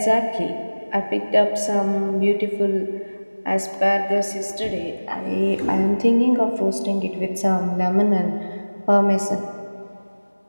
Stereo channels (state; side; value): inverted; both; correlation -1.00